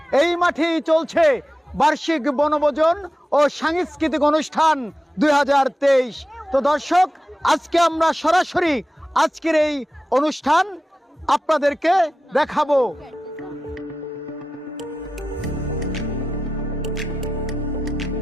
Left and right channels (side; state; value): both; normal; correlation 0.93